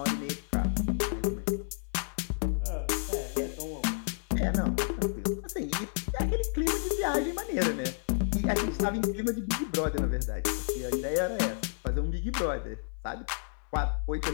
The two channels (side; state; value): right; silent; digital silence